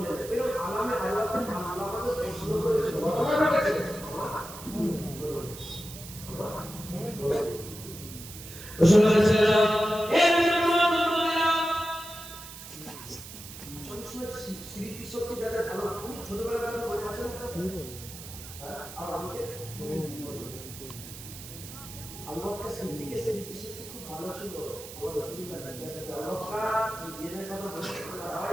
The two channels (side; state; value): right; noise; hiss, 13 dB below the sound